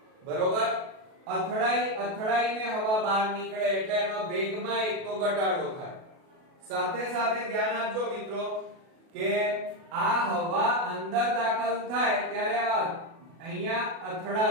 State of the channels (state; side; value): late; left; 37 ms